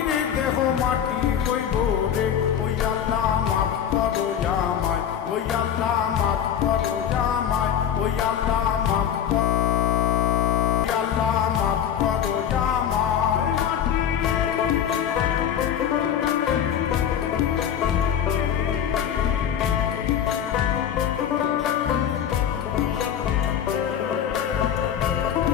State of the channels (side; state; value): right; quieter; 9.2 dB